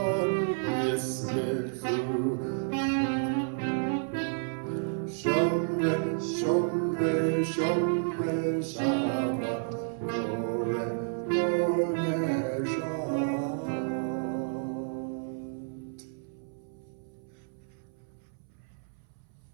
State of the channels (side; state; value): left; silent; 57 dB below the other